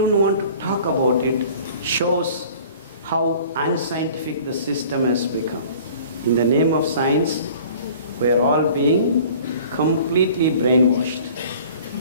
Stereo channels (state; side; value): inverted; both; correlation -0.48